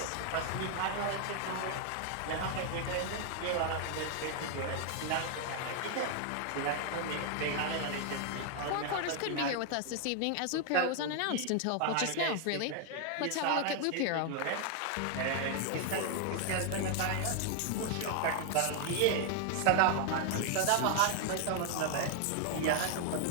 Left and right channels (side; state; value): both; different; correlation 0.00